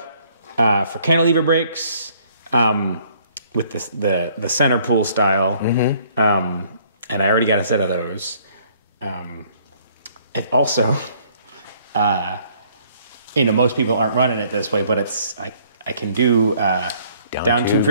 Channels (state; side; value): inverted; both; correlation -0.62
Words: for cantilever brakes with the center pull style, and I already got a set of those. It also, you know, most people aren't running it this way, but it's I can do down tube